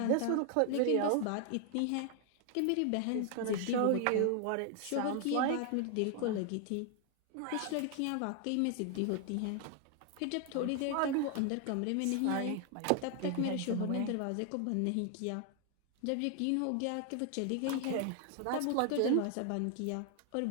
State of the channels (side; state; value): both; different; correlation 0.00